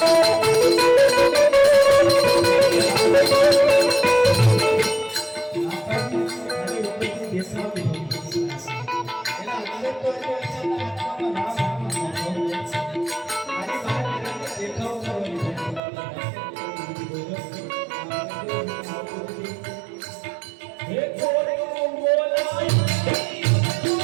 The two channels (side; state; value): left; drops out; at 15.8 s